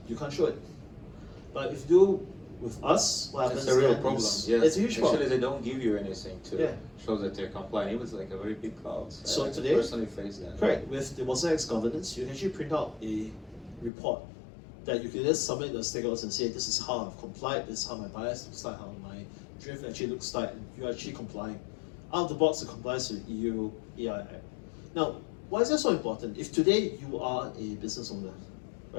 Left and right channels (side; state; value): right; drops out; at 13.9 s